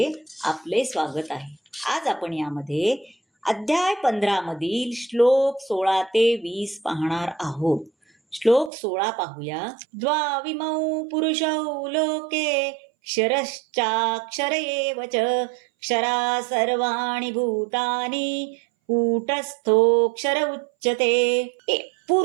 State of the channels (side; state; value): left; drops out; at 8.7 s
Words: आपले स्वागत आहे. आज आपण यामध्ये अध्याय 15 मधील श्लोक 16 ते 20 पाहणार आहोत. श्लोक 16 पाहूया. द्वाविमौ पुरुषौ लोके क्षरश्चाक्षर एव च क्षरा सर्वाणि भूतानि कूटस्थोऽक्षर उच्यते.